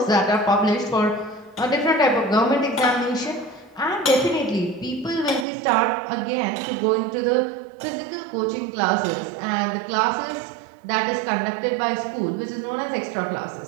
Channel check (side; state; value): left; drops out; at 5.5 s